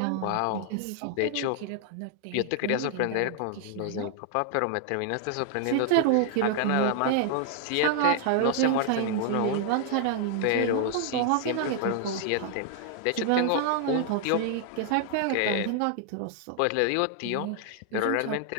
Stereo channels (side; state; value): both; different; correlation 0.00